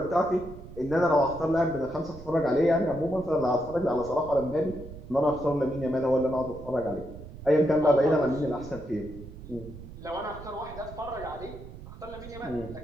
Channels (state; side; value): noise; right; rumble, 15 dB below the sound